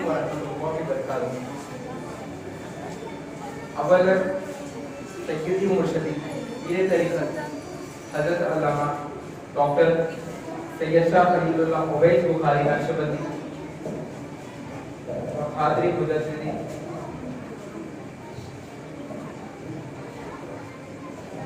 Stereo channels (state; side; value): identical; both; correlation 1.00